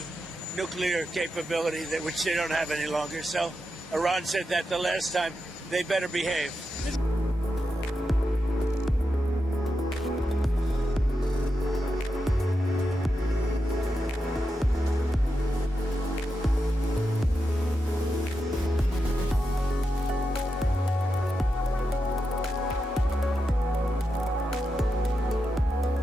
nuclear capability, which they don't have any longer. So Iran said that the last time. They better behave.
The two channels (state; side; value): normal; both; correlation 0.87